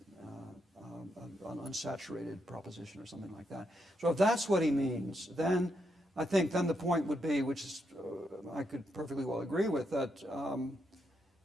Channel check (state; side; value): normal; both; correlation 0.80